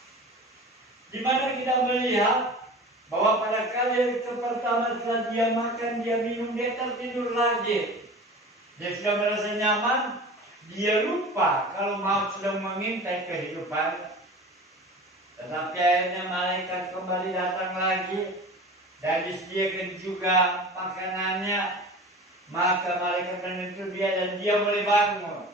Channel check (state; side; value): normal; both; correlation 0.37